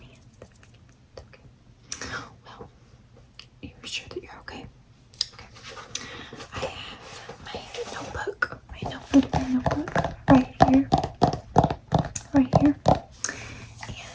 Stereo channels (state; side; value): identical; both; correlation 1.00